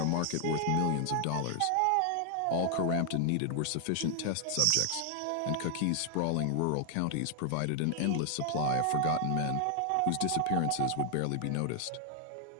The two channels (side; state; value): both; different; correlation 0.00